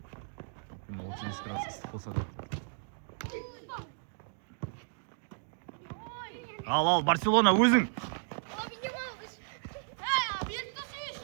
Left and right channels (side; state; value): left; silent; digital silence